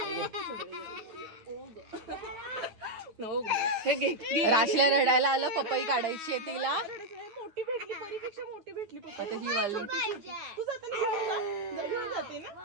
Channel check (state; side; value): late; left; 9.2 ms